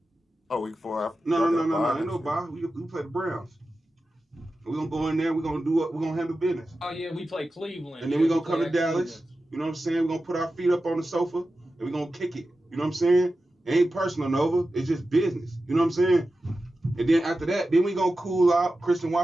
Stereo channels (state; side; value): normal; both; correlation 0.93